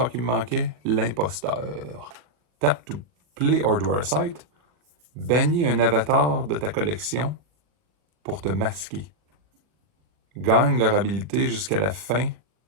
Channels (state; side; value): late; left; 40 ms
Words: qui me manquait, l'imposteur. Tap to play or draw a site. Bannis un avatar de ta collection pour te masquer. Gagne leur habilité jusqu'à la fin.